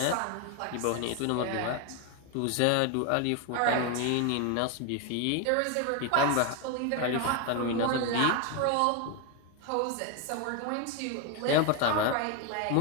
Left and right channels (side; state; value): both; different; correlation 0.01